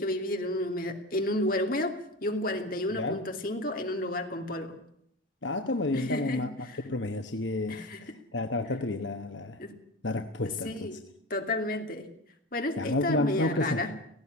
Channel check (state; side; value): normal; both; correlation 0.27